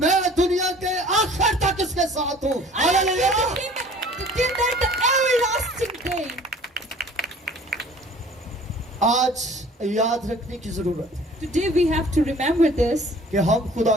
दुनिया के आखिर तक इसके साथ हूँ। I am hallelujah. with him till that the everlasting day. आज याद रखने की जरूरत है Today we have to remember this, कि हम खुदा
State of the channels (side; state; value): both; normal; correlation 0.50